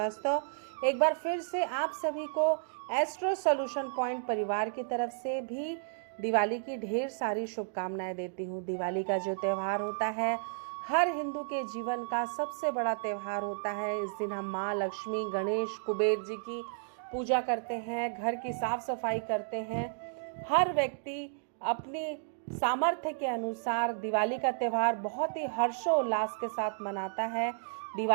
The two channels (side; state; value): left; silent; digital silence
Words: एक बार फिर से आप सभी को एस्ट्रो सोल्यूशन पॉइंट परिवार की तरफ से भी दिवाली की ढेर सारी शुभकामनाएं देती हूँ। दिवाली का जो त्यौहार होता है हर हिंदू के जीवन का सबसे बड़ा त्यौहार होता है। इस दिन हम माँ लक्ष्मी, गणेश, कुबेर जी की पूजा करते हैं, घर की साफ सफाई करते हैं। हर व्यक्ति अपनी सामर्थ्य के अनुसार दिवाली का त्यौहार बहुत ही हर्षोल्लास के साथ मनाता है।